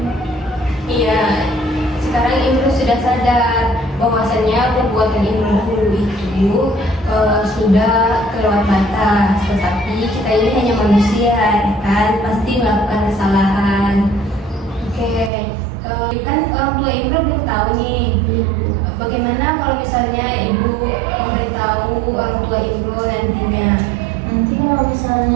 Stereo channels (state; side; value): drops out; left; at 15.3 s